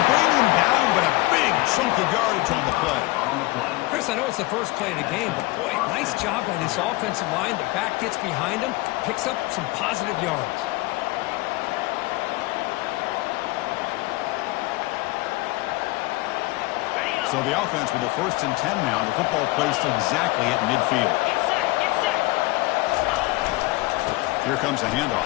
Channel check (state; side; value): quieter; right; 21.2 dB